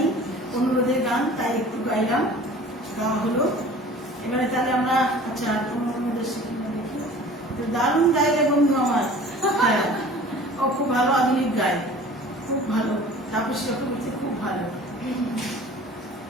অনুরোধের গান, তাই একটু গাইলাম, গাওয়া হলো। এবারে তাহলে আমরা, আচ্ছা অনুরোধের শিখে দেখি। দারুণ গাইলে বন্ধু আমার। হ্যাঁ, ও খুব ভালো আধুনিক গায়, খুব ভালো। তাপসী চক্রবর্তী খুব ভালো।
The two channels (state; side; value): normal; both; correlation 0.45